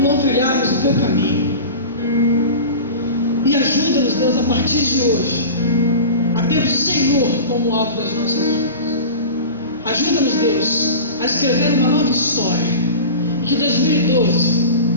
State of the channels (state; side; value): inverted; both; correlation -0.32